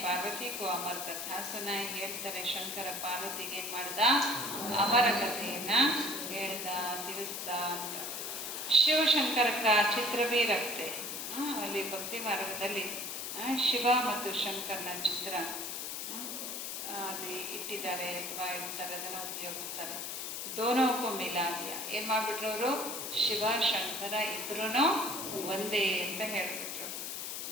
ಪಾರ್ವತಿಗೂ ಅಮರ ಕಥಾ ಸುನಾಯಿ. ಹೇಳ್ತಾರೆ, ಶಂಕರ ಪಾರ್ವತಿಗೆ ಏನು ಮಾಡ್ದ? ಅಮರ ಕಥೆಯನ್ನು ಹೇಳ್ದ, ತಿಳಿಸ್ದ ಅಂತ. ಶಿವಶಂಕರ ಚಿತ್ರ ಭೀ ರಕ್ತೆ. ಅಲ್ಲಿ ಭಕ್ತಿ ಮಾರ್ಗದಲ್ಲಿ ಶಿವ ಮತ್ತು ಶಂಕರನ ಚಿತ್ರ ಅಲ್ಲಿ ಇಟ್ಟಿದ್ದಾರೆ, ಅಥವಾ ಇರ್ತಾರೆ, ಅದನ್ನು ಉಪಯೋಗಿಸ್ತಾರೆ. ದೋನೋಕ್ಕೂ ಮಿಲಾದಿಯ. ಏನು ಮಾಡಿಬಿಟ್ರು ಅವರು? ಶಿವ ಶಂಕರ ಇಬ್ಬರೂ ಒಂದೇ ಅಂತ ಹೇಳಿಬಿಟ್ರು.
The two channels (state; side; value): noise; left; hiss, 5 dB below the sound